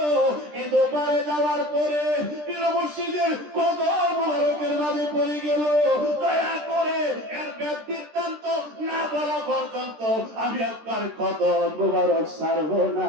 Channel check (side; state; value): left; late; 13 ms